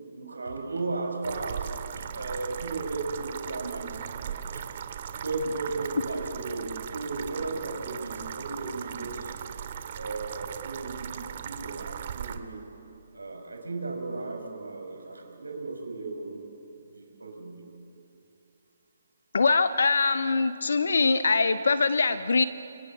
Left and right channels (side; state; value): both; inverted; correlation -0.84